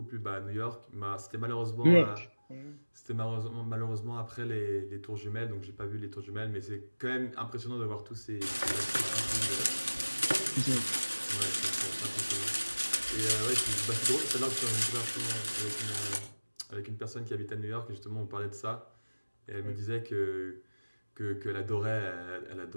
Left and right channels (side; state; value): both; inverted; correlation -1.00